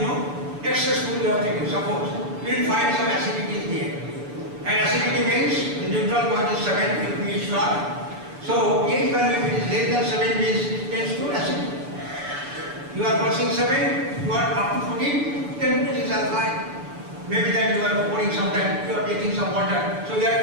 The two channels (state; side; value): late; left; 6.9 ms